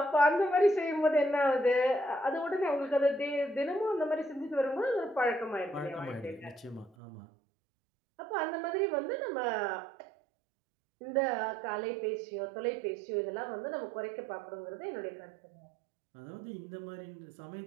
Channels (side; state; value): left; drops out; at 7.0 s